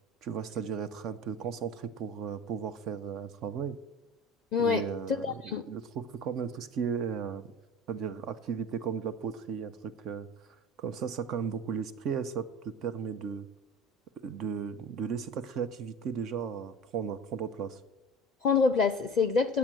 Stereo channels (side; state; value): both; normal; correlation 0.37